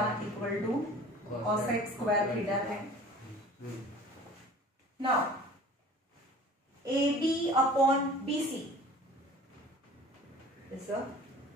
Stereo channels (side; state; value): both; normal; correlation 0.45